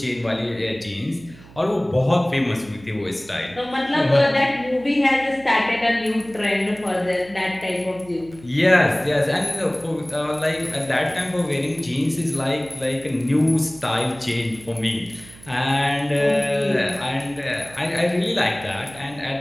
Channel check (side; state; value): right; noise; hum, 21 dB below the sound